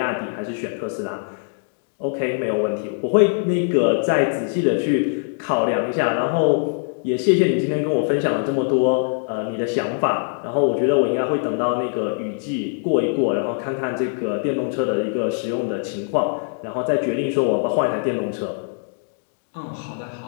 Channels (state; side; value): silent; right; 62 dB below the other